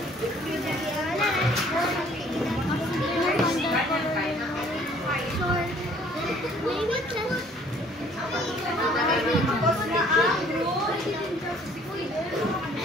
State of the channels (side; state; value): both; normal; correlation 0.57